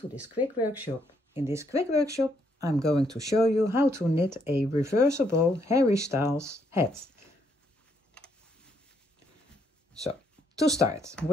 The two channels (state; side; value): normal; both; correlation 0.73